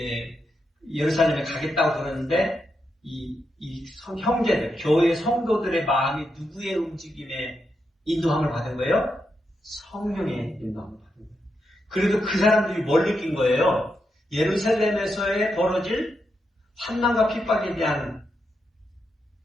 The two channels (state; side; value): normal; both; correlation 0.84